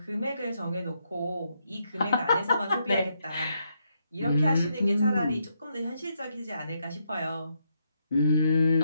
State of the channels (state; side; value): inverted; both; correlation -0.79